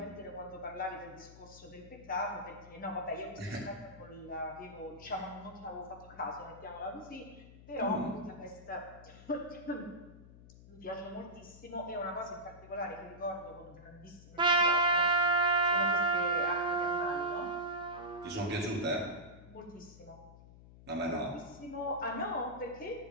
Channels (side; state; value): left; noise; hum, 19 dB below the sound